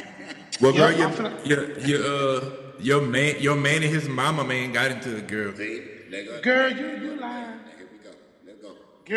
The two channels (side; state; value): both; identical; correlation 1.00